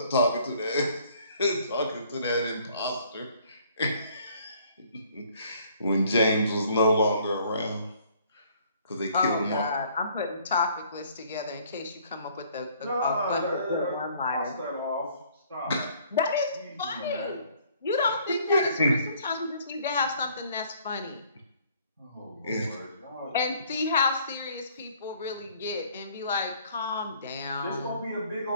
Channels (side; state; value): both; inverted; correlation -0.60